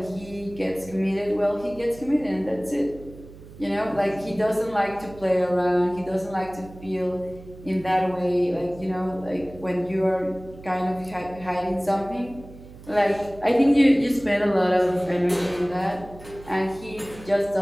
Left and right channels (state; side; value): noise; right; hum, 18 dB below the sound